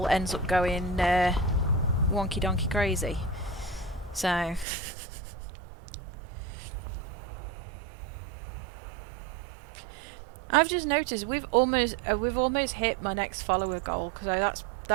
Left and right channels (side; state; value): left; drops out; at 4.7 s